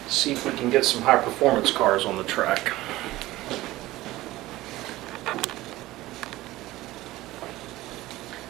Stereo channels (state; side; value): quieter; left; 17.3 dB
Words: see if we can get some high performance cars on the track.